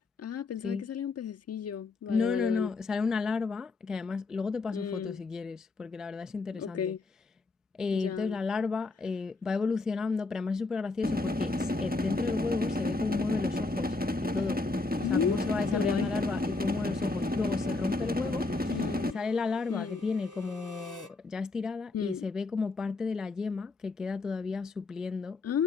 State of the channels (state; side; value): quieter; right; 3.6 dB